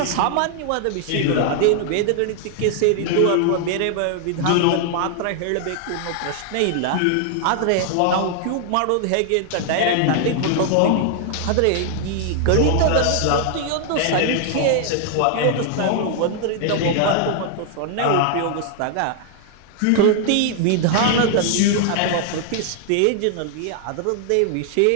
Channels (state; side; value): different; both; correlation 0.00